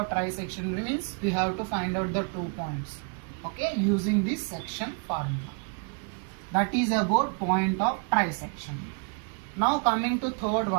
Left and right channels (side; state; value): left; quieter; 38.1 dB